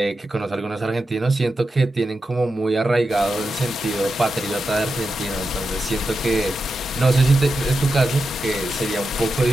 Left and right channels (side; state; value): both; normal; correlation 0.89